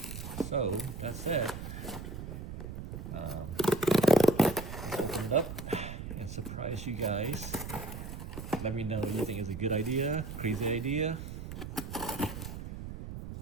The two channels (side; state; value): right; noise; rumble, 8 dB below the sound